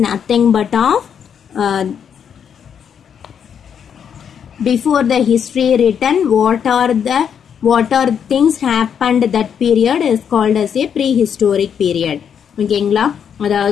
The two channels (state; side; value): quieter; right; 7.9 dB